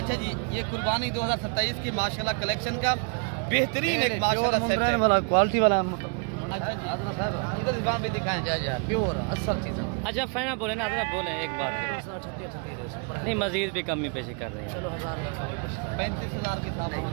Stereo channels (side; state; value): left; quieter; 37.2 dB